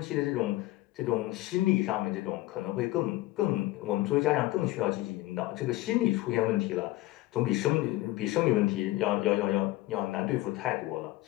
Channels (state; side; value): quieter; right; 18.3 dB